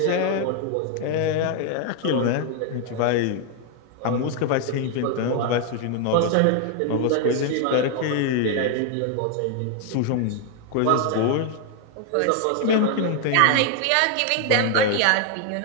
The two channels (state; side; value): different; both; correlation 0.00